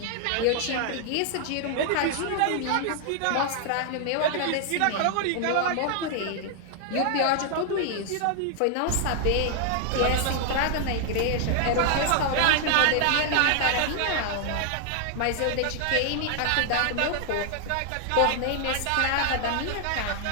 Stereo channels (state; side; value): different; both; correlation 0.00